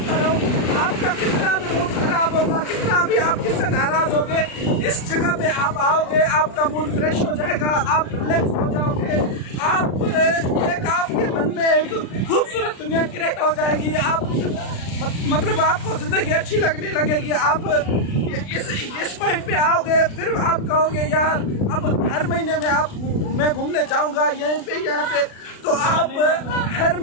करो। आपका कितना भी मूड खराब होगा, कितना भी आप किससे नाराज होगे, इस जगह पे आप आओगे, आपका मूड फ्रेश हो जाएगा, आप रिलैक्स हो जाओगे, आप एक आपके मन में एक खूबसूरत दुनिया क्रिएट हो जाएगी। आप मतलब आपको जिंदगी अच्छी लगने लगेगी। आप इस पॉइंट पे आओगे, फिर आप कहोगे यार अब हर महीने में मैं घूमने जाऊंगा यहीं पे यहाँ पे। तो आप हर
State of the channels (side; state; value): right; late; 36 ms